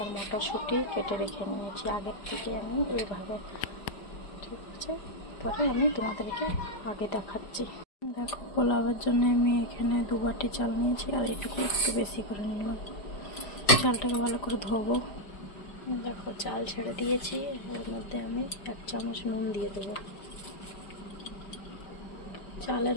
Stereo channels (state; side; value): late; right; 5.0 ms